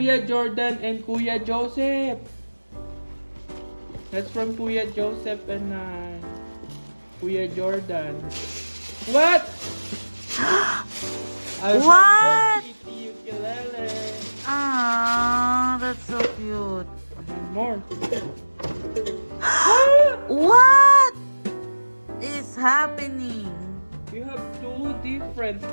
Jordan and Kuya Joseph. That's from Kuya Joseph and Kuya Jordan. What? What? Kitty ukulele. Ah, that's so cute. And more. What is happening? You have two different.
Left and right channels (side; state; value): both; inverted; correlation -1.00